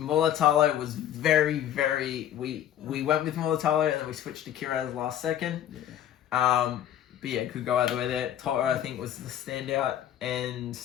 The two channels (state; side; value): quieter; right; 11.0 dB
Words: was very... We went with Militalo and then we switched to Kiraz last second. Yeah. But yeah, could go either way there. Toto, I think, was the standout. And